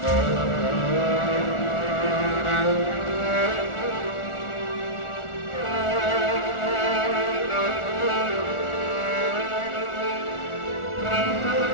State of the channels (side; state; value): right; late; 1.4 ms